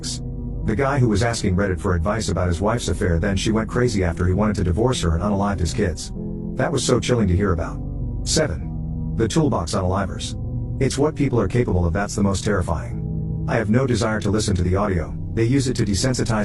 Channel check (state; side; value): identical; both; correlation 1.00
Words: The guy who was asking Reddit for advice about his wife's affair, then she went crazy after he wanted to divorce her and unalived his kids. That was so chilling to hear about. 7. The toolbox unalivers. It's what people are capable of that's the most terrifying. I have no desire to listen to the audio. They use it to